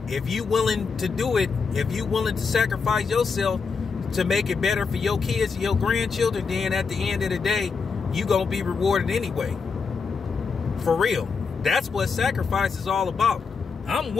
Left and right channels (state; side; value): quieter; right; 5.2 dB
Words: if you willing to do it, if you willing to sacrifice yourself to make it better for your kids and your grandchildren, then at the end of the day, you going to be rewarded anyway. For real. That's what sacrifice is all about. I'm